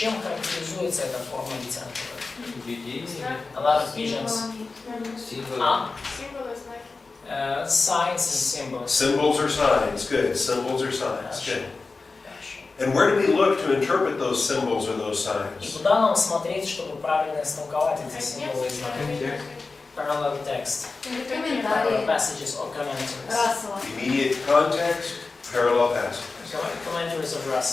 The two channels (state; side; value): quieter; right; 4.0 dB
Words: характеризуется эта форма литературы? Видение, A lot of visions. символы. Signs and symbols. Symbols or signs, good. Symbols or signs, Хорошо. good. Хорошо. And where do we look to interpret those symbols or those И signs? куда нам смотреть, чтобы правильно истолковать эти символы и знаки? Parallel text, parallel Комментарии. passages or commentaries. Рассела. Immediate context, parallel passages. Commentaries of